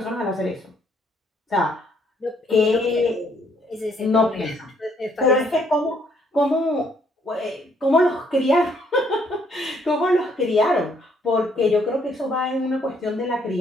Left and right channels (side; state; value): both; normal; correlation 0.68